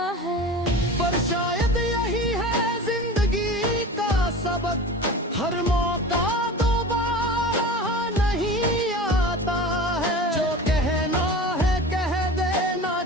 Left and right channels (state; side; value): normal; both; correlation 0.35